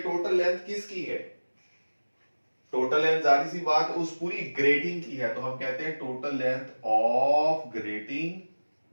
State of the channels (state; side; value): inverted; both; correlation -1.00